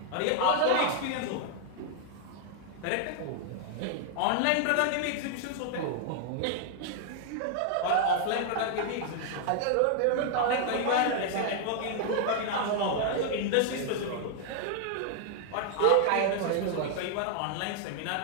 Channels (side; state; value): both; different; correlation 0.00